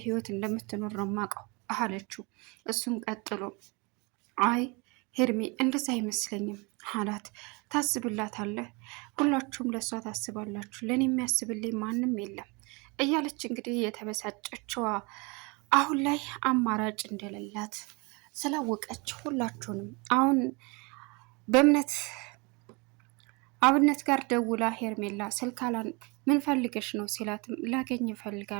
ህይወት እንደምትኖር ነው የማውቀው አለችው። እሱም ቀጥሎ አይ ሄርሜ እንደዛ አይመስለኝም አላት። ታስብላታለህ፣ ሁላችሁም ለእሷ ታስባላችሁ፣ ለእኔ የሚያስብልኝ ማንም የለም እያለች እንግዲህ የተበሳጨችዋ አሁን ላይ አማራጭ እንደሌላት ስላወቀች ሁላችሁንም አሁን በእምነት አብነት ጋር ደውላ ሄርሜላ ስልካላን ምን ፈልገሽ ነው ሲላትም ላገኝ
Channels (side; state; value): left; quieter; 28.8 dB